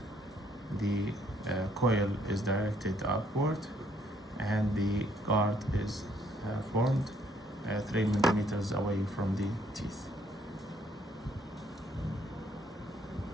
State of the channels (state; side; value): normal; both; correlation 0.67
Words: the coil is directed upward, and the guard is formed 3 millimeters away from the teeth.